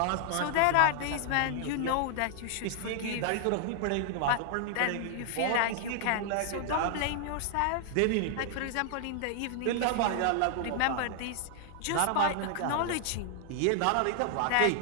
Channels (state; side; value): different; both; correlation 0.00